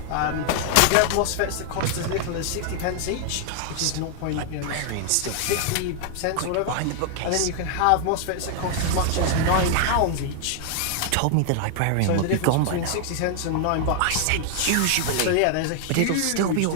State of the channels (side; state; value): both; different; correlation 0.00